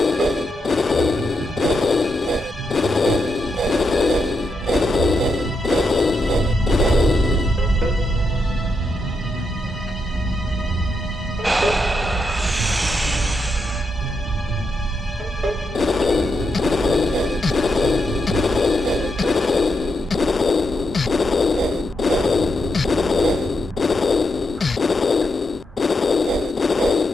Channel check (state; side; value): normal; both; correlation 0.83